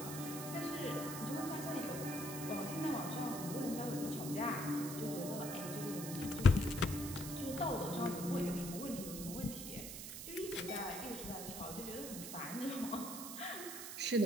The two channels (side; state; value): right; noise; hiss, 8 dB below the sound